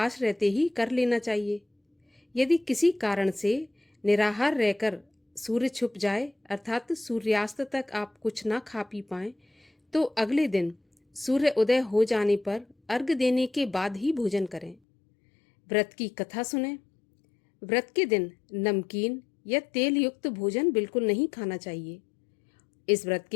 रहते ही कर लेना चाहिए। यदि किसी कारण से निराहार रहकर सूर्य छुप जाए अर्थात सूर्यास्त तक आप कुछ ना खा पी पाएं, तो अगले दिन सूर्य उदय हो जाने पर अर्घ्य देने के बाद ही भोजन करें। व्रत की कथा सुनें। व्रत के दिन नमकीन या तेल युक्त भोजन बिल्कुल नहीं खाना चाहिए। इस व्रत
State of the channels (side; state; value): right; drops out; at 14.8 s